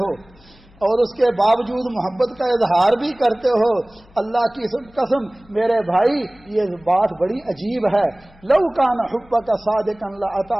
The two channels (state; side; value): noise; left; hum, 27 dB below the sound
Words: اور اس کے باوجود محبت کا اظہار بھی کرتے ہو. اللہ کی قسم میرے بھائی یہ بات بڑی عجیب ہے. لو کان حبک صادقا